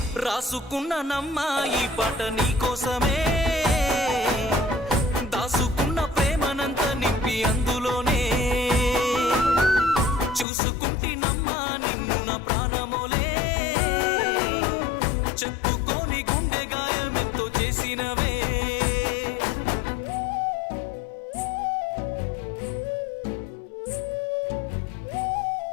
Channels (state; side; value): drops out; right; at 10.5 s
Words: రాసుకున్న నమ్మా ఈ పాట నీకోసమే, దాసుకున్న ప్రేమనంత నింపి అందులోనే, చూసుకుంటినమ్మా నిన్ను నా ప్రాణమోలే, చెప్పుకోని గుండె గాయమెంతో చేసినవే.